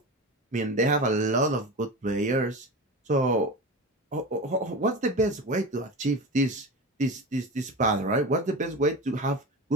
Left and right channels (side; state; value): both; normal; correlation 0.27